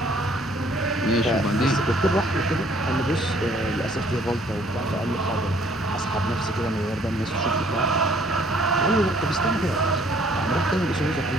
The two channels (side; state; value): both; normal; correlation 0.61